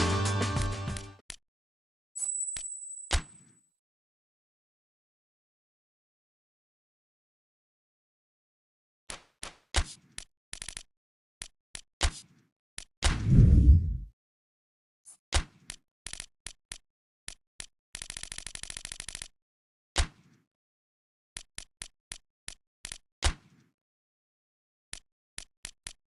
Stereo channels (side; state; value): both; normal; correlation 0.97